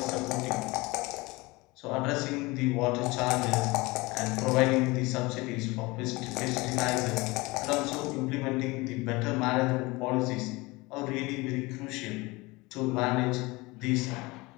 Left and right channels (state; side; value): quieter; right; 23.2 dB